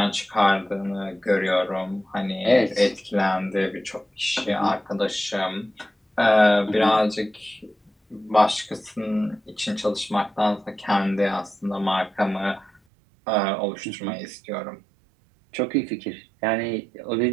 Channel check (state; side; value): drops out; left; at 12.8 s